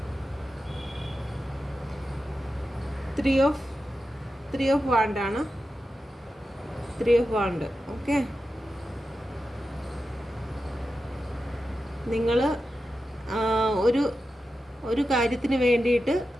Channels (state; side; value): normal; both; correlation 0.91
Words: ത്രീ ഓഫ് വാണ്ടാണ്. 3 ഓഫ് വാണ്ട്. ഓക്കെ, നിങ്ങൾ ഒരു കാര്യത്തിന് വേണ്ടിയിട്ട്